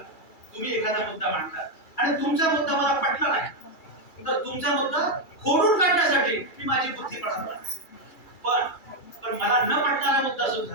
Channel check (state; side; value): late; right; 2.3 ms